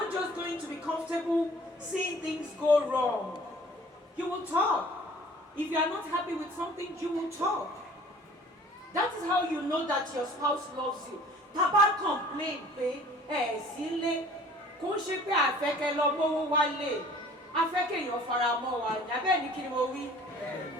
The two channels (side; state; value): both; normal; correlation 0.50